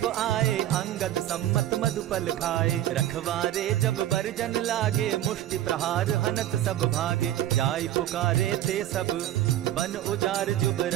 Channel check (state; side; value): quieter; left; 12.9 dB